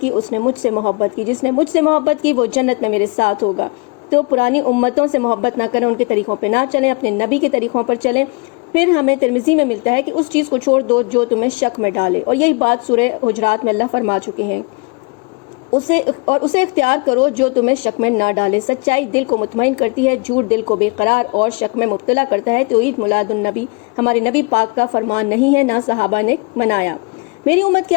اس نے مجھ سے محبت کی، جس نے مجھ سے محبت کی وہ جنت میں میرے ساتھ ہوگا۔ تو پرانی امتوں سے محبت نہ کریں، ان کے طریقوں پہ نہ چلیں، اپنے نبی کے طریقوں پر چلیں۔ پھر ہمیں ترمذی میں ملتا ہے کہ اس چیز کو چھوڑ دو جو تمہیں شک میں ڈالے، اور یہی بات سورہ حجرات میں اللہ فرما چکے ہیں، اسے اختیار کرو جو تمہیں شک میں نہ ڈالے۔ سچائی دل کو مطمئن کرتی ہے، جھوٹ دل کو بے قرار اور شک میں مبتلا کرتا ہے۔ تو عید میلاد النبی ہمارے نبی پاک کا فرمان نہیں ہے، نہ صحابہ نے منایا۔ میری امت کے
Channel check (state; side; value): quieter; right; 31.6 dB